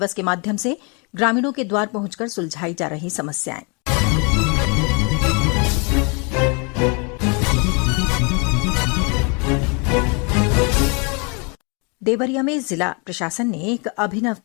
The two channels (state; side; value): quieter; right; 33.2 dB